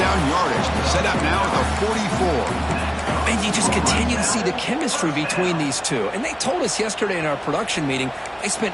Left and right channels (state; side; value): identical; both; correlation 1.00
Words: yardage. Set up now at the 44. And you just continue to see the chemistry between these two. And they told us yesterday in our production meeting, they